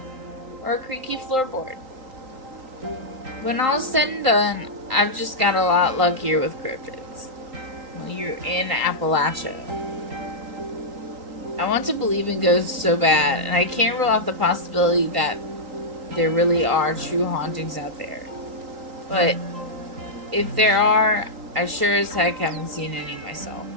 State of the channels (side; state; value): left; late; 3.8 ms